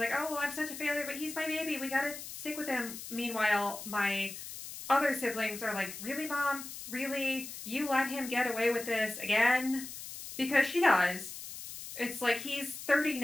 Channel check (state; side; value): noise; left; hiss, 10 dB below the sound